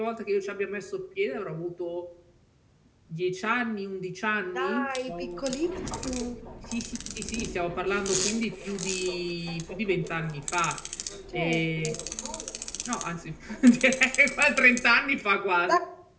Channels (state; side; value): identical; both; correlation 1.00